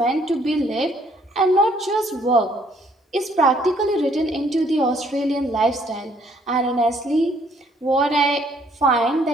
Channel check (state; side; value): normal; both; correlation 0.65